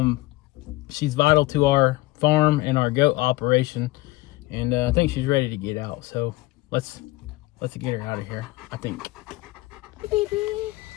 She's vital to our farm and our goat operation, and I think she's ready to get out. So let's get her out of here, I think. Hey, baby.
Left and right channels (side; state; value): right; quieter; 19.5 dB